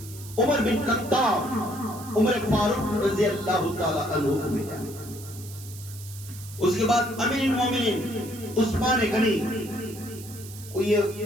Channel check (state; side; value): noise; right; hiss, 16 dB below the sound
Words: عمر بن خطاب, عمر فاروق رضی اللہ تعالی عنہ کو ملا. اس کے بعد امیر المومنین عثمان غنی کو یہ